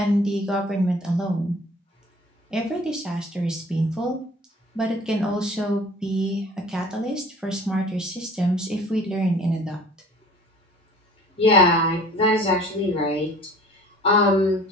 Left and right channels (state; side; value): normal; both; correlation 0.48